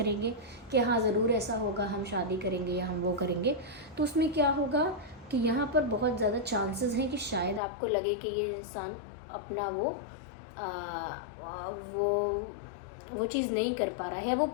कि हाँ ज़रूर ऐसा होगा, हम शादी करेंगे या हम वो करेंगे, तो उसमें क्या होगा कि यहाँ पर बहुत ज़्यादा चांसेस हैं कि शायद आपको लगे कि ये इंसान अपना वो चीज़ नहीं कर पा रहा है, वो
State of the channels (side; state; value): right; drops out; at 7.6 s